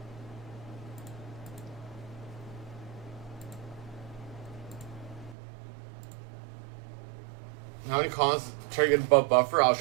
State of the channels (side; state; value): left; drops out; at 5.4 s